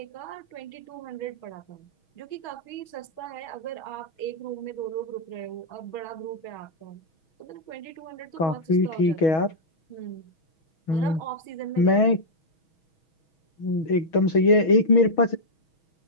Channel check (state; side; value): late; right; 6.3 ms